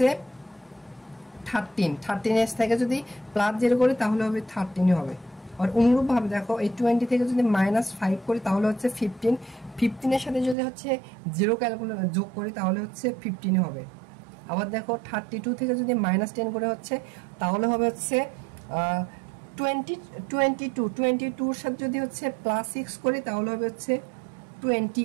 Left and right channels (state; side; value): drops out; left; at 10.6 s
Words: 13, 13 থেকে যদি +0 করি তাহলে হবে 13 হবে। আর অনুরূপভাবে দেখো এই 20 থেকে যদি -5 করি তাহলে হচ্ছে 15, 15 এর সাথে যদি হচ্ছে 0 ক্যালকুলেট যোগ করি তাহলে হচ্ছে 15 হবে। আবার দেখো 32 থেকে যদি -10 করে হচ্ছে তাহলে হবে হচ্ছে 22 এর সাথে যদি হচ্ছে +6 করি তাহলে হবে হচ্ছে